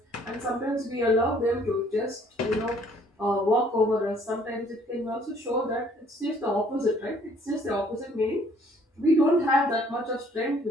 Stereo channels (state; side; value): normal; both; correlation 0.61